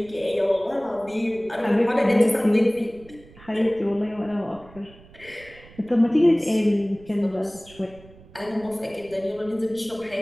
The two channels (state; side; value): noise; right; rumble, 23 dB below the sound